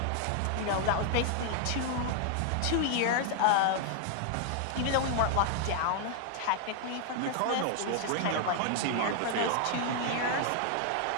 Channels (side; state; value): both; different; correlation 0.00